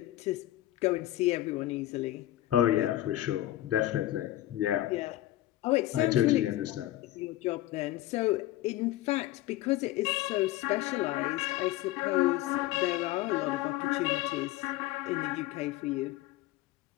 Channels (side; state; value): right; quieter; 15.3 dB